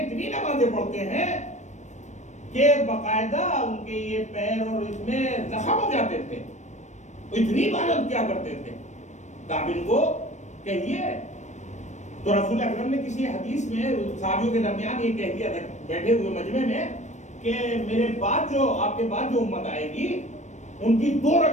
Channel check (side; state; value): right; late; 0.34 ms